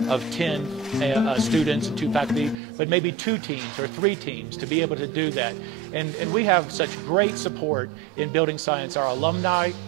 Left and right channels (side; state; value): left; drops out; at 2.6 s